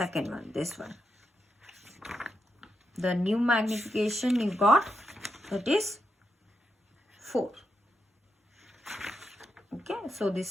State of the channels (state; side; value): normal; both; correlation 0.84